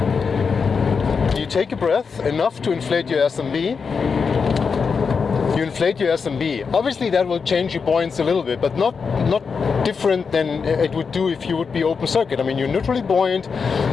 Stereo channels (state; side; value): quieter; right; 5.5 dB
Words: You take a breath, enough to inflate your SMB. You inflate your SMB. Obviously that will change your buoyancy a little bit, but not different than it would do if you would be open circuit. I mean, you're neutrally buoyant.